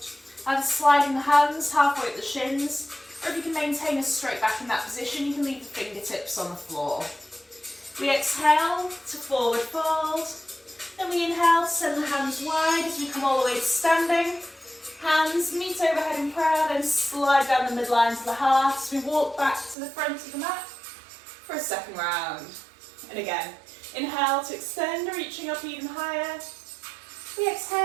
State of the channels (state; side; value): drops out; left; at 19.8 s